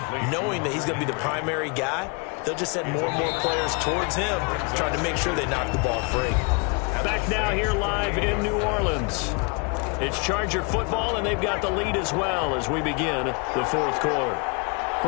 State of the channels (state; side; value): quieter; right; 32.7 dB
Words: knowing that he's going to be the primary guy. They'll just send more and more players towards him, trying to make sure they knock the ball free. Back now here live in New Orleans. It's Charger football, and they've got the lead as well as we begin the fourth quarter.